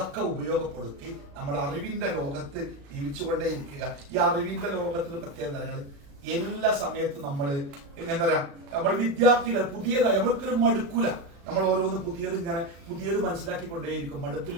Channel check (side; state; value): left; late; 36 ms